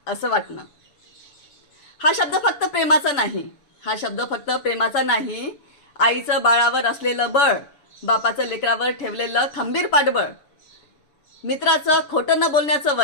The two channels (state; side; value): late; right; 7.0 ms